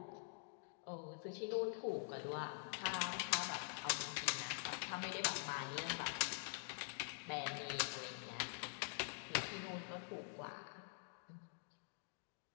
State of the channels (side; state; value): right; silent; digital silence